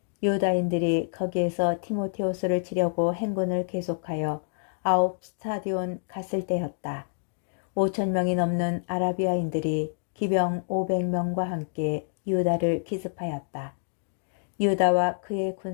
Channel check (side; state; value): right; silent; digital silence